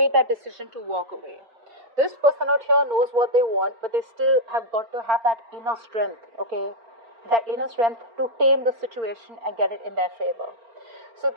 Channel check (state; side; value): late; left; 4.4 ms